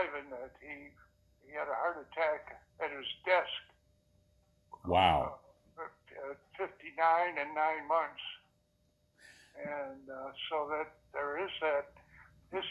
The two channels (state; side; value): identical; both; correlation 1.00